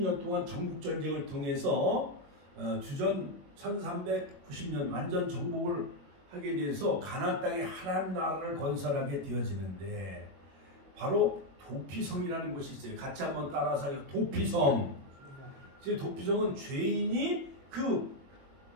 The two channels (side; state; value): left; late; 21 ms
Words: 동안 정복전쟁을 통해서 주전 1390년 완전 정복을 하게 돼서 가나안 땅에 하나님 나라를 건설하게 되어지는데 바로 도피성이라는 곳이 있어요. 같이 한번 따라서 도피성. 도피성은 죄인이 그